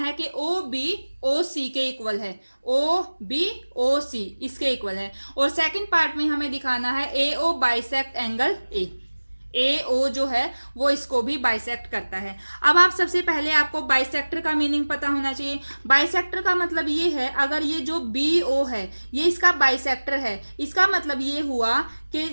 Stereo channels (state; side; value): inverted; both; correlation -1.00